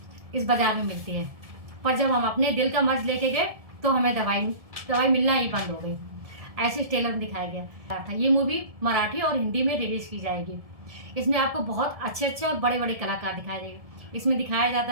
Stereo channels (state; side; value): late; left; 1.7 ms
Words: इस बाजार में मिलती है, पर जब हम अपने दिल का मर्ज लेके गए तो हमें दवाई मिलना ही बंद हो गई। ऐसे ट्रेलर में दिखाया गया था। ये मूवी मराठी और हिंदी में रिलीज की जाएगी। इसमें आपको बहुत अच्छे अच्छे और बड़े बड़े कलाकार दिखाई देंगे। इसमें दिखाया जाता